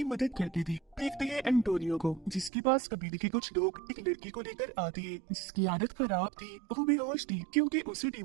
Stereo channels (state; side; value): drops out; left; at 2.5 s